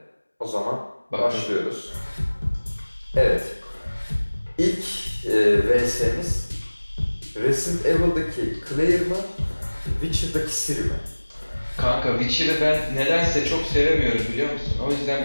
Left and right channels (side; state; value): both; inverted; correlation -1.00